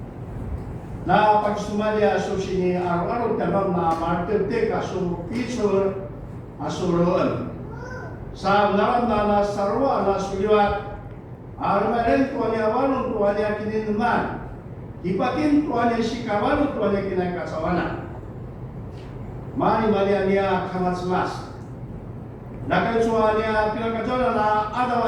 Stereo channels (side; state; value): both; identical; correlation 1.00